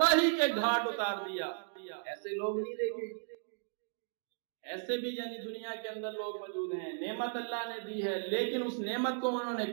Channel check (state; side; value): silent; left; digital silence